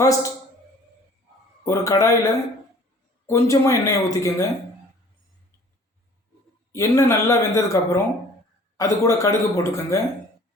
ஒரு கடாயில் கொஞ்சமாக எண்ணெயை ஊற்றிக்கோங்க. எண்ணெய் நல்லா வெந்ததுக்கப்புறம் அது கூட கடுகு போட்டுக்கோங்க.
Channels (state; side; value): normal; both; correlation 0.51